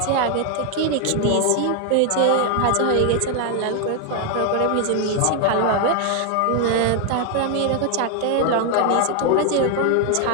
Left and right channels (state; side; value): different; both; correlation 0.00